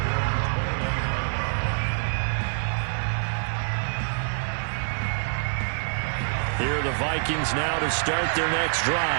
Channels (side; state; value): left; silent; digital silence